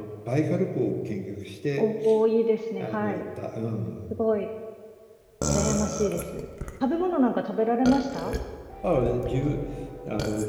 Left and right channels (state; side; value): identical; both; correlation 1.00